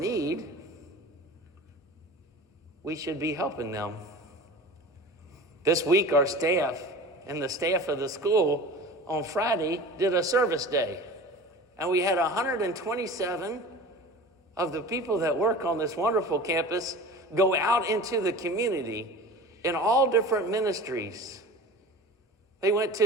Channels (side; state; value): both; normal; correlation 0.37